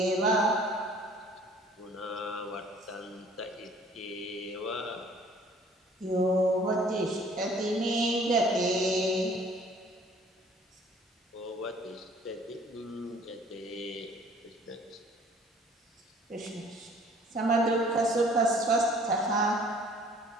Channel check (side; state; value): both; normal; correlation 0.54